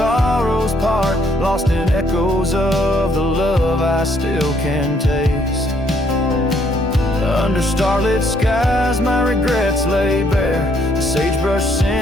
part. Lost in echoes of the love I still can taste. Under starlit skies my regrets lay bare. The sagebrush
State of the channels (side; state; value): both; normal; correlation 0.68